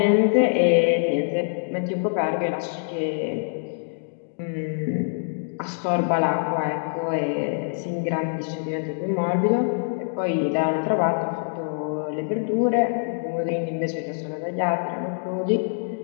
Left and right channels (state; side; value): silent; right; digital silence